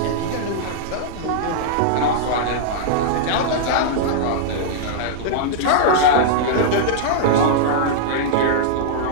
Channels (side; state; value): both; different; correlation -0.02